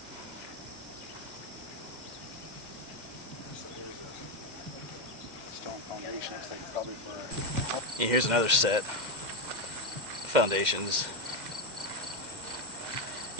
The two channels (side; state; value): left; late; 2.1 ms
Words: Stone foundation. I think probably for. And here's another set of foundations.